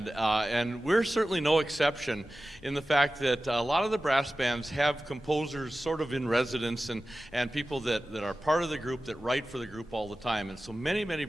and we're certainly no exception in the fact that a lot of the brass bands have composers sort of in residence and people that are part of the group that write for the group all the time. And so many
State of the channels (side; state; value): both; normal; correlation 0.95